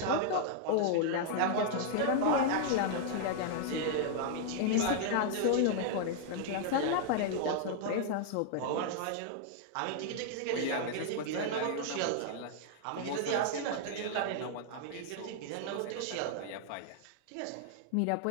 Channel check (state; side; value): different; both; correlation -0.01